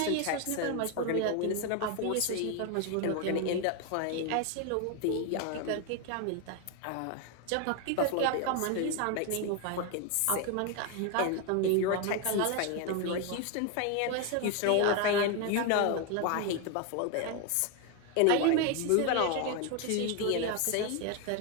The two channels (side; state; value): both; different; correlation 0.01